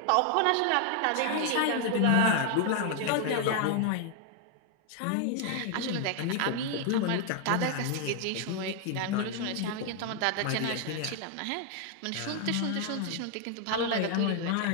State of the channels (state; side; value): different; both; correlation 0.00